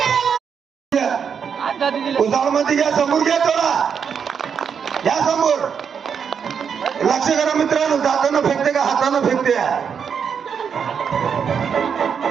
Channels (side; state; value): left; quieter; 6.9 dB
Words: उजाळमध्ये घ्या, समोर घ्या, थोडा या समोर. लक्ष करा मित्रांनो, जाताना फेकते का हातानं फेकते.